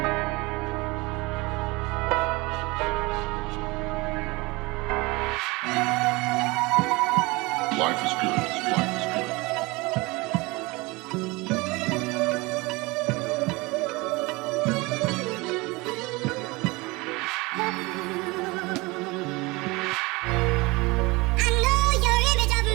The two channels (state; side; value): quieter; left; 23.9 dB